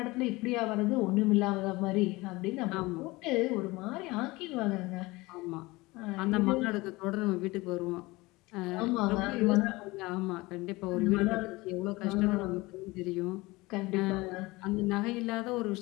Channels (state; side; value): quieter; right; 21.8 dB